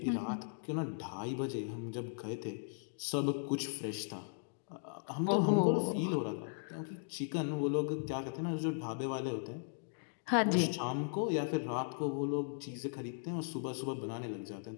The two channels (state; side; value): silent; right; digital silence